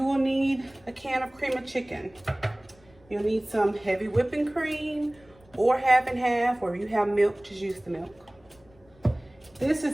will need a can of cream of chicken. You'll need some heavy whipping cream or half and half, or if you have milk, just use the milk. This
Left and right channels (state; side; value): noise; left; rumble, 29 dB below the sound